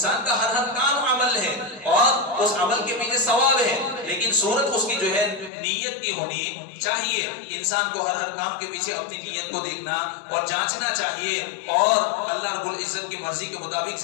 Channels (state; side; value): drops out; right; at 5.5 s